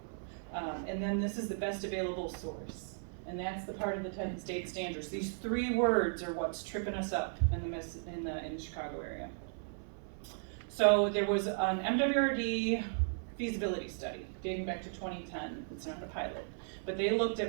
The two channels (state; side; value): silent; left; 54 dB below the other